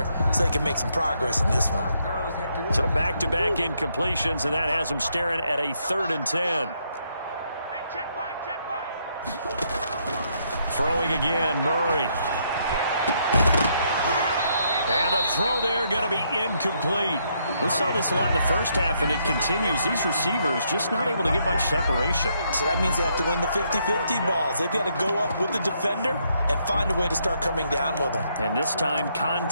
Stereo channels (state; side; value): inverted; both; correlation -0.74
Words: so they can make some progress in this one. So back-to-back incompletions, and that has them staring at a 3rd and 10. Throwing again, Murray. And the throw there going to be incomplete. We saw this a lot in the first half, and it continues. These receivers just not able to get much separation. So that means they have to win the 50-50 balls. They've got to go up with the defender and find a way to start coming down with them. And this time,